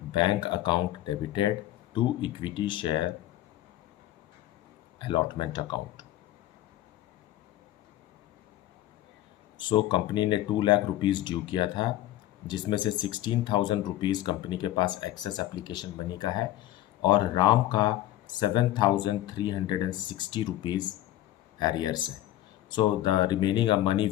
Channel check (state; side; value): quieter; right; 14.1 dB